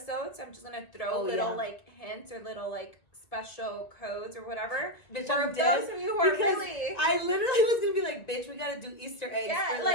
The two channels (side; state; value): right; late; 1.9 ms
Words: I'm just gonna throw little like hints or little like special codes or whatever. Bitch, for those of you who are really, I literally was gonna be like, bitch, we gotta do Easter eggs. Yeah, for